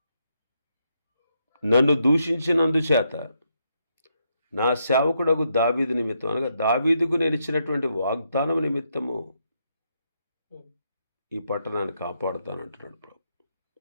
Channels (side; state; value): both; inverted; correlation -0.78